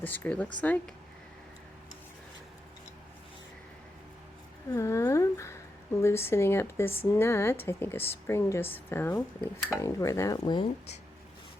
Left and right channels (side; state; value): both; normal; correlation 0.86